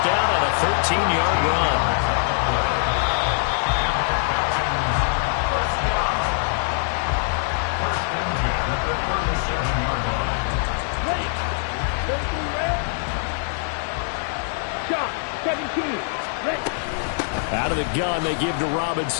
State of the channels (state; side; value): silent; right; digital silence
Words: down on a 13-yard run. Out of the gun, they give to